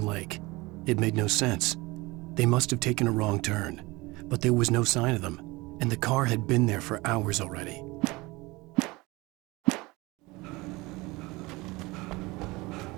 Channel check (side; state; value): left; quieter; 22.6 dB